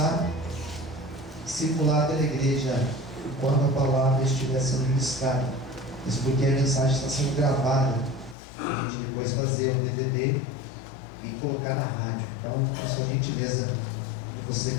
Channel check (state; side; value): drops out; right; at 8.3 s